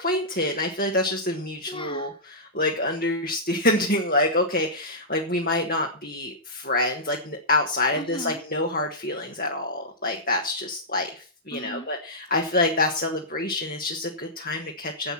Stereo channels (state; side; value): normal; both; correlation -0.14